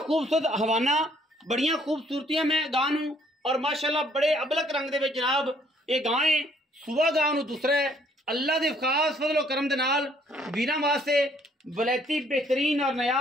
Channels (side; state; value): both; normal; correlation 0.64